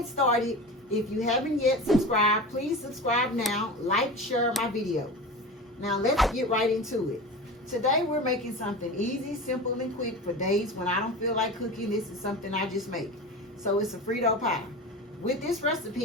started, if you haven't yet subscribed, please subscribe now, like, share my video. Now let's get right into it. Today we're making something easy, simple, and quick for days when I don't feel like cooking. This is something I just make. So it's a Frito pie. With this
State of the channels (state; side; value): normal; both; correlation 0.30